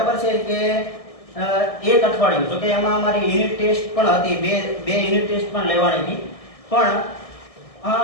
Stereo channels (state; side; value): late; right; 1.6 ms